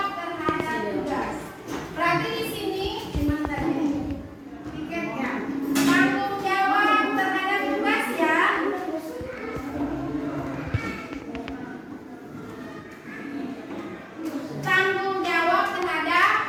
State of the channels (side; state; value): both; identical; correlation 1.00